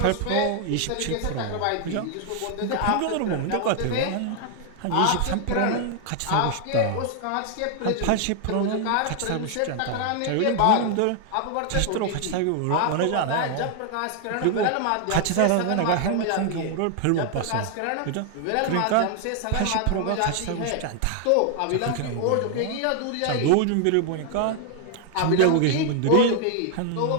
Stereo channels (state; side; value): different; both; correlation 0.00